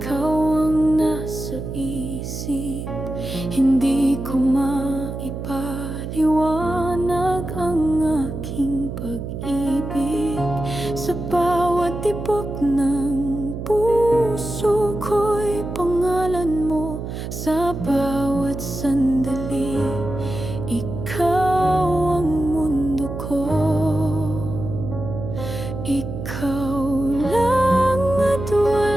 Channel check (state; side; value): noise; right; hum, 7 dB below the sound